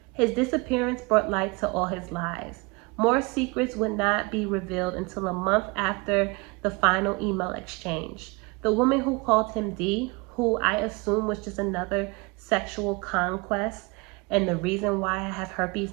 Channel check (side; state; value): left; quieter; 27.5 dB